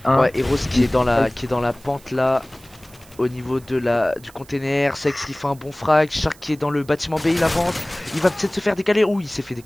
A. Ouais, Eros Il qui est dans la pente là. Au niveau du container, Sex qui fait un bon frag, Shark qui est dans le bâtiment B, il avance, il va peut-être se faire décaler. Ouh, il s'est fait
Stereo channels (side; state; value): right; noise; hiss, 25 dB below the sound